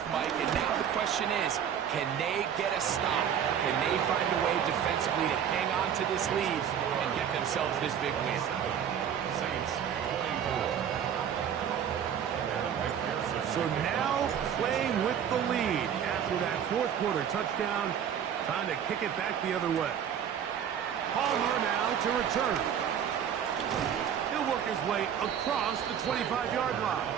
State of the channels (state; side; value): quieter; left; 8.7 dB